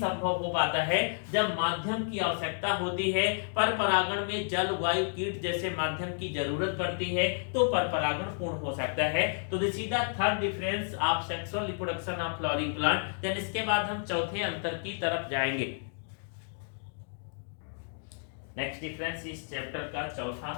हो पाता है जब माध्यम की आवश्यकता होती है। परपरागण में जल, वायु, कीट जैसे माध्यम की जरूरत पड़ती है तो परपरागण पूर्ण हो सकता है। तो this is the third difference of sexual reproduction of flowering plant. Then इसके बाद हम चौथे अंतर की तरफ जाएंगे। नेक्स्ट डिफरेंस इस चैप्टर का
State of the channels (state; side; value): silent; right; digital silence